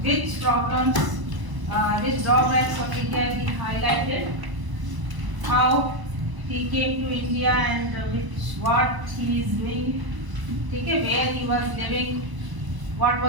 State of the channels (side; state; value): left; late; 1.0 ms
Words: which problems, which drawbacks of India he highlighted, how he came to India and what he is doing, okay, where he was living, what